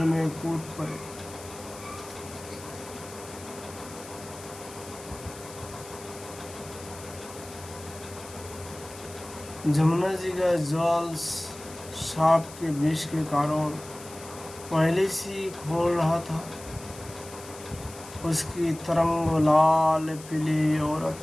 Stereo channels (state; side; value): noise; left; hiss, 16 dB below the sound